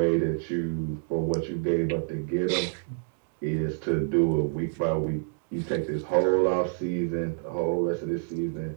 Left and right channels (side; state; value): left; silent; digital silence